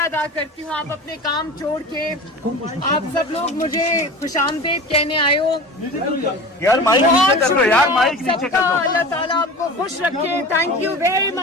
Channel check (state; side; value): normal; both; correlation 0.34